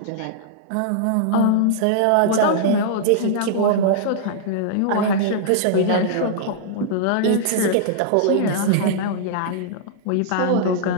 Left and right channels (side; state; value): both; different; correlation -0.02